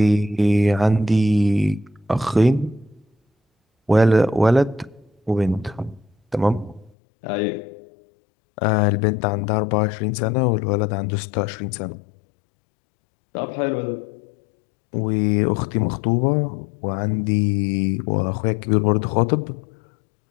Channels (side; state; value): right; drops out; at 6.9 s